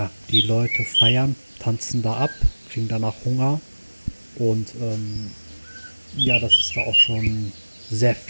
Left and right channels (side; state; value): both; inverted; correlation -1.00